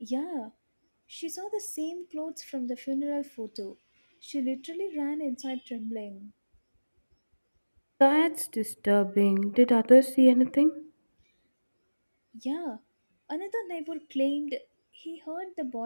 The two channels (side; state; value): both; inverted; correlation -1.00